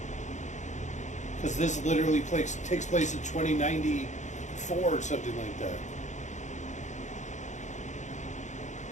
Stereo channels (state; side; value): late; right; 0.35 ms